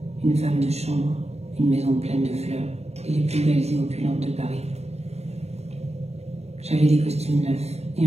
Une femme de chambre, une maison pleine de fleurs et les plus belles et opulentes de Paris. J'avais des costumes neufs et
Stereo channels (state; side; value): late; left; 0.31 ms